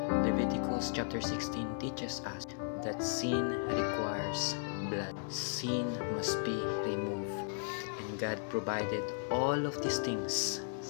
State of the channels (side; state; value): right; silent; 54 dB below the other